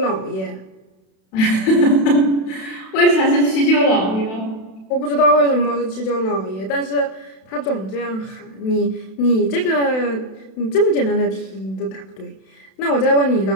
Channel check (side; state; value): right; late; 32 ms